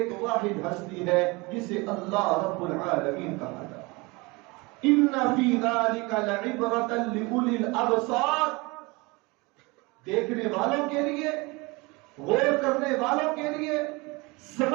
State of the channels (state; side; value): quieter; left; 25.4 dB